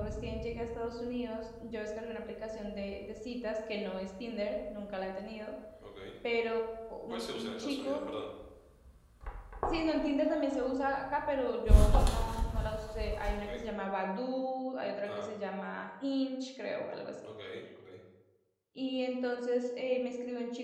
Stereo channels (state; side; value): identical; both; correlation 1.00